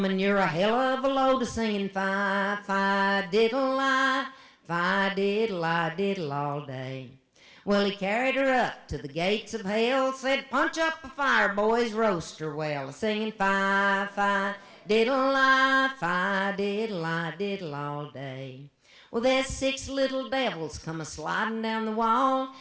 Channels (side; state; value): both; identical; correlation 1.00